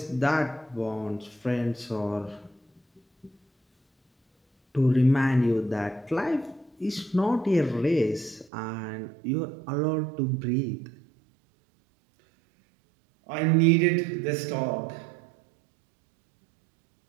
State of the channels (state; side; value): drops out; left; at 8.5 s